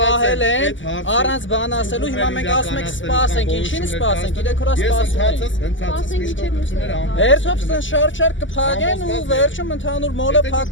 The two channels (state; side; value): late; right; 0.55 ms